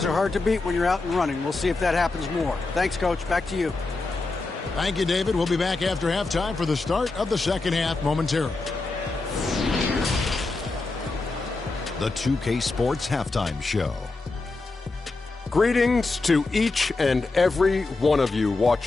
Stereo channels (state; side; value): quieter; right; 3.5 dB